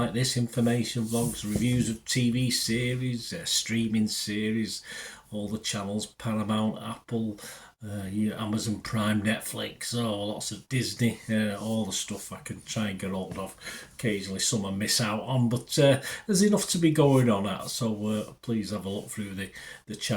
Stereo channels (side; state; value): both; identical; correlation 1.00